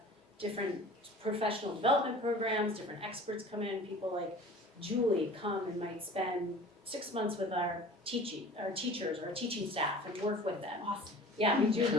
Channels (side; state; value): both; normal; correlation 0.42